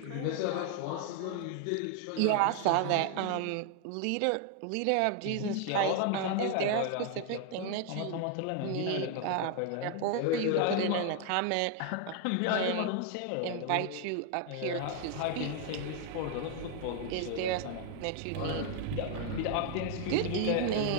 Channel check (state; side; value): different; both; correlation 0.00